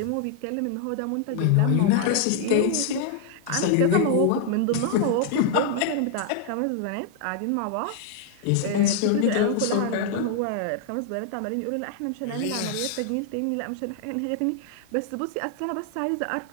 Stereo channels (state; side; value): different; both; correlation 0.00